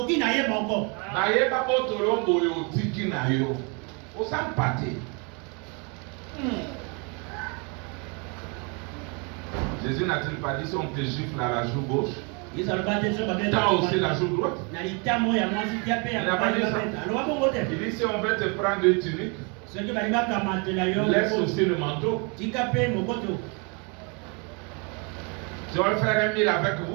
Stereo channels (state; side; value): quieter; left; 33.6 dB